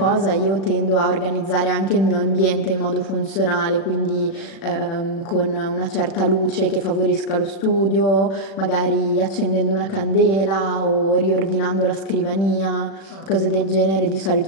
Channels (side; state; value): right; late; 36 ms